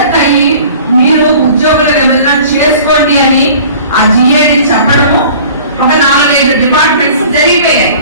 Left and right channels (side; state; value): both; inverted; correlation -0.46